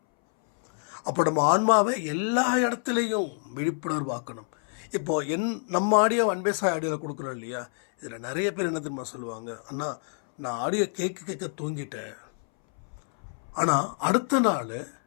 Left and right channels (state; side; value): silent; right; 60 dB below the other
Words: அப்போ நம்ம ஆன்மாவை எல்லா இடத்துலையும் விழிப்புணர்வாக்கணும். இப்போது நம்ம ஆடியோ அன்பேசாய் ஆடியோவில் கொடுக்குறோம் இல்லையா, இதில் நிறைய பேர் என்ன தெரியுமா சொல்லுவாங்க, அண்ணா நான் ஆடியோ கேட்க தூங்கிட்டேன், ஆனால் அடுத்த நாள்